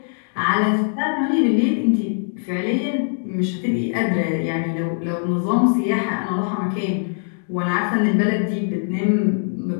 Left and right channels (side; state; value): right; silent; 65 dB below the other